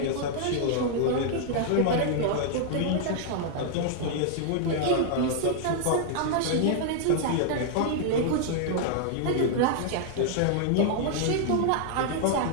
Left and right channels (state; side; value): different; both; correlation -0.01